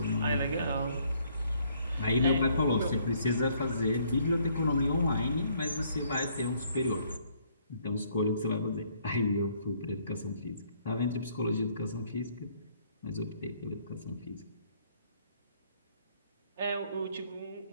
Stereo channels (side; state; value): both; inverted; correlation -0.65